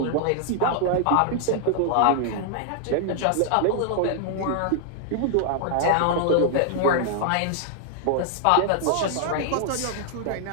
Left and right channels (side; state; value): both; different; correlation -0.01